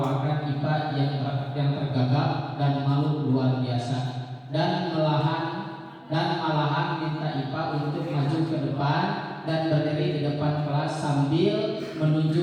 IPA yang tergagap dan malu luar biasa, dan malahan minta IPA untuk maju ke depan dan berdiri di depan kelas sambil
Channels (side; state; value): both; identical; correlation 1.00